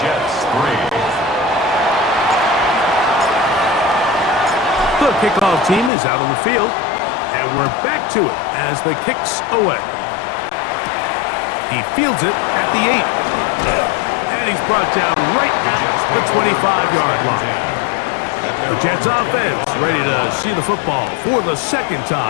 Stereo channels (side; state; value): right; drops out; at 5.9 s